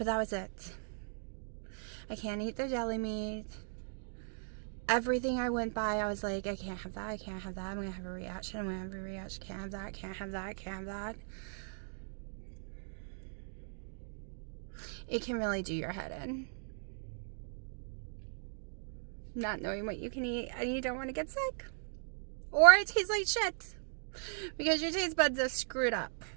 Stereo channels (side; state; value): left; silent; digital silence